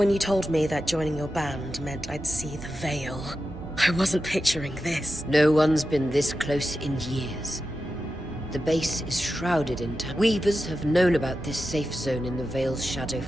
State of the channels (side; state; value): both; normal; correlation 0.91